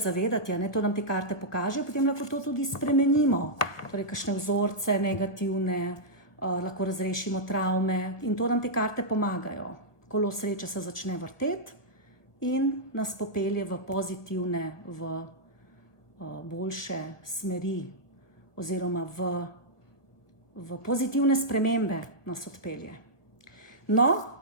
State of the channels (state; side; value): late; right; 1.3 ms